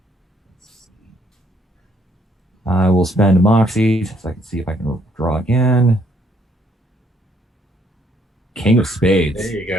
I will spend Moxie so I can see if I can draw again. King of spades. There you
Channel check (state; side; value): normal; both; correlation 0.68